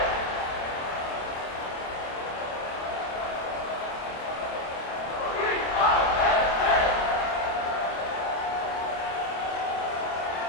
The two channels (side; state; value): right; late; 27 ms